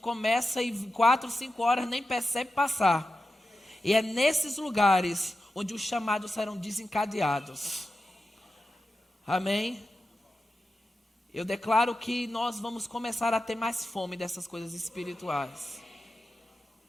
e 4, 5 horas nem percebe passar, e é nesses lugares onde os chamados serão desencadeados. Amém? Eu declaro que nós vamos começar a ter mais fome dessas coisas espirituais.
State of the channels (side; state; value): both; normal; correlation 0.91